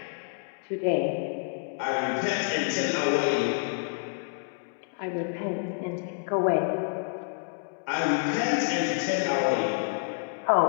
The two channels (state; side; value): silent; right; digital silence